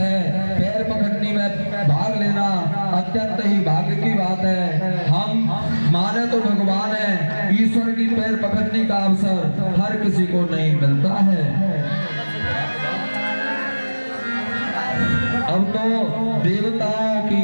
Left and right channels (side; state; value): both; inverted; correlation -1.00